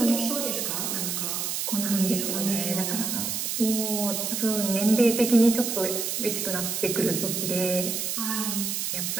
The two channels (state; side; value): noise; right; hiss, 2 dB below the sound